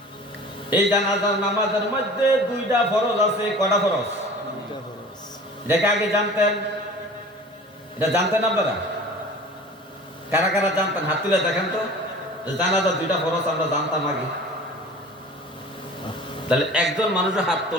এই জানাজার নামাজের মধ্যে 2টা ফরজ আছে। কয়টা ফরজ? দেখে আগে জানতেন? এটা জানতেন আপনারা? কারা কারা জানতেন? হাত তুলে দেখেন তো। জানাজার 2টা ফরজ আমরা জানতাম আগে। তাহলে একজন মানুষের হাত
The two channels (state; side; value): normal; both; correlation 0.42